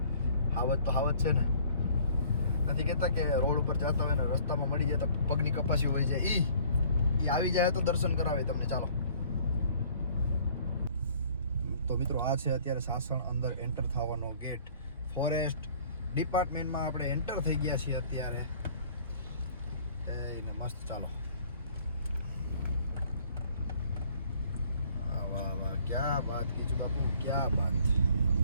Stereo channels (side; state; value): both; inverted; correlation -0.55